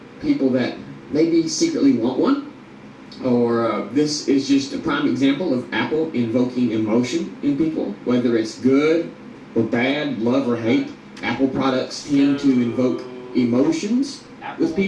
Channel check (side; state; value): both; identical; correlation 1.00